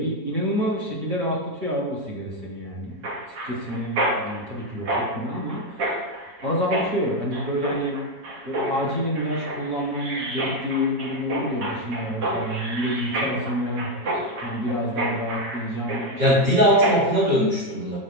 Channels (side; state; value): left; late; 7.3 ms